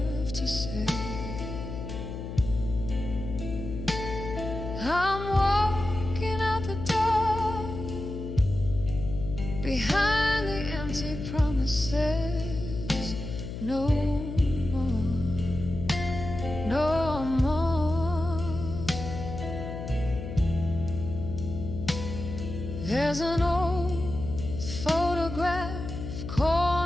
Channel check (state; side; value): noise; left; hum, 7 dB below the sound